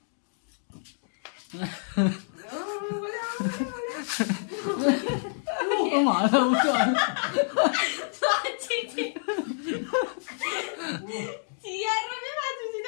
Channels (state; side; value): silent; right; digital silence